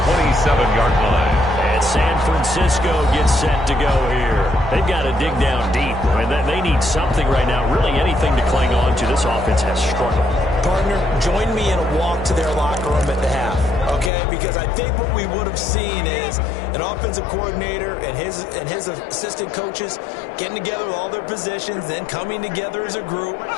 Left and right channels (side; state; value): right; drops out; at 14.1 s